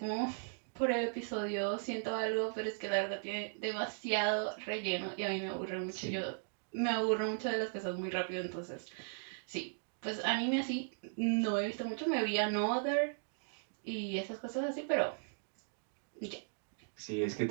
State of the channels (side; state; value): left; silent; digital silence